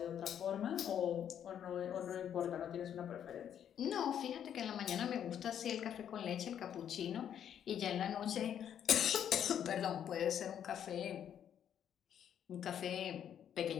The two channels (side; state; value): right; quieter; 9.4 dB